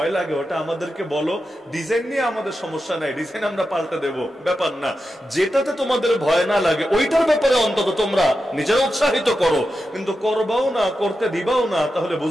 লাগে ওটা আমাদেরকে বলো, ডিজাইন নিয়ে আমাদের সমস্যা নাই, ডিজাইন আমরা পাল্টে দেব, ব্যাপার না। যেটাতে তোমাদের ভয় না লাগে ওইটার ব্যাপারে অন্তত তোমরা নিজেরা উৎসাহিত করো, কিন্তু করবাও না, করতে দিবাও না, তাহলে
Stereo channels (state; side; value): normal; both; correlation 0.90